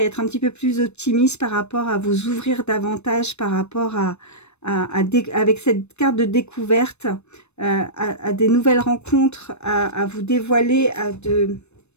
être un petit peu plus optimiste par rapport à vous ouvrir davantage, par rapport avec cette carte de découverte, à des nouvelles rencontres, à vous dévoiler,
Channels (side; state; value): right; late; 0.81 ms